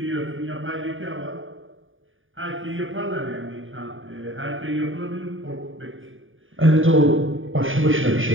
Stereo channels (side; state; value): left; late; 0.58 ms